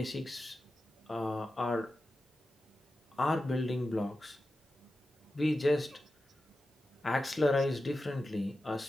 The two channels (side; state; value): both; normal; correlation 0.92